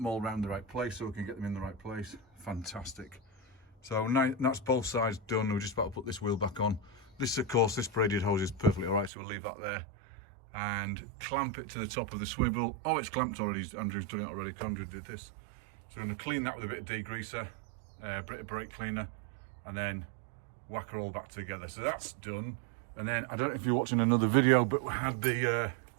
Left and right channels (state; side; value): drops out; left; at 9.1 s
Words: all around the right place so we can get them in the right place. Fantastic. So now that's both sides done. We're just about to put this wheel back on. This, of course, this braided hose is perfectly all right, so we'll leave that there and clamp it to the top of the swivel. Oh, it's clamped already. Andrew's done it already. Andrew did this. So we're going to clean that with a bit of degreaser, a bit of brake cleaner, and then whack her all back together. So that's done. And then I don't know if you're watching another video, but we had the